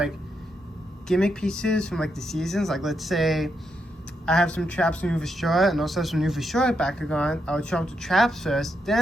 gimmick pieces from like the seasons, like let's say I have some traps from New Shore and also some New Shore Bakugan. I would show up the traps first,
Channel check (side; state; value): both; normal; correlation 0.82